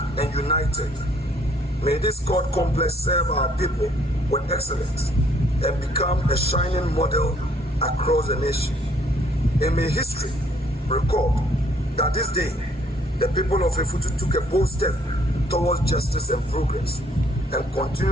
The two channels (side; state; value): both; normal; correlation 0.64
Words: and united. May this court complex serve our people with excellence and become a shining model across the nation. And may history record that this day, the people of Efutu took a bold step towards justice and progress and